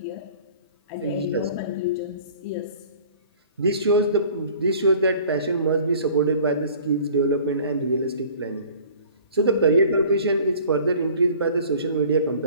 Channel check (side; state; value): both; inverted; correlation -0.48